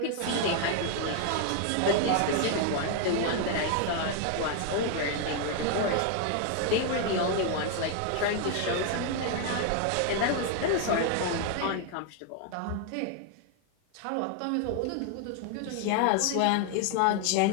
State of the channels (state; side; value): different; both; correlation 0.00